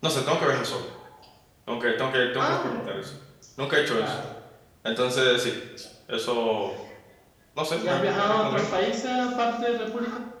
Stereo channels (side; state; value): both; identical; correlation 1.00